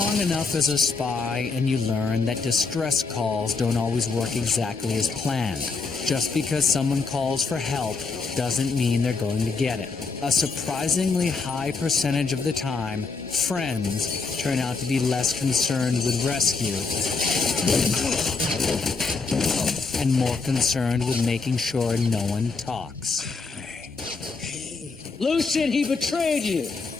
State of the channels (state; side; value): quieter; right; 4.4 dB